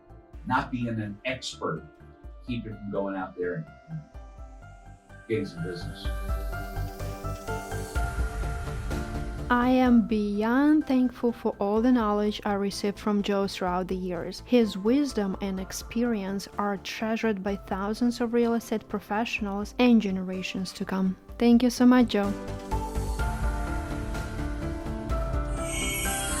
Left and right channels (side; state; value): both; identical; correlation 1.00